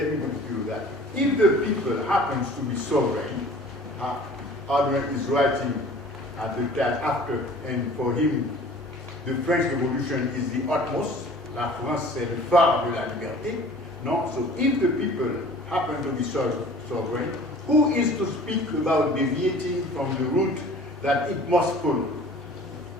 me give you that. If the people happens to be sovereign, Ardouin is writing at the time after, and for him, the French Revolution is the utmost. La France, c'est le phare de la liberté. No? So if the people happen to be sovereign, who is to speak about deviating from the route that it must follow?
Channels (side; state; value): both; normal; correlation 0.47